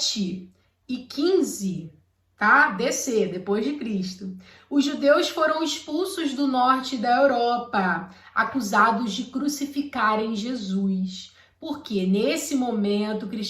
e 15, tá? DC, depois de Cristo, os judeus foram expulsos do norte da Europa, acusados de crucificarem Jesus. Porque nesse momento o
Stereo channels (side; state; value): both; identical; correlation 1.00